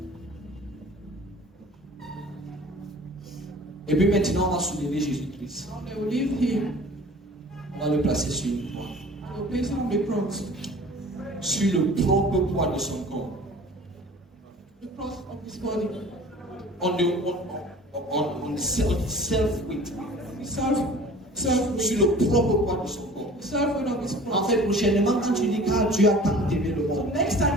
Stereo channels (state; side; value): normal; both; correlation 0.45